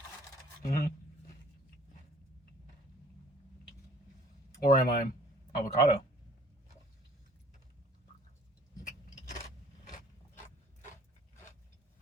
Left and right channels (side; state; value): both; normal; correlation 0.54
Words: Or am I avocado?